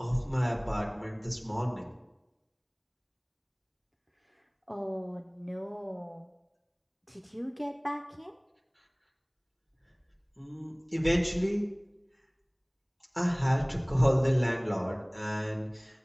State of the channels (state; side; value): identical; both; correlation 1.00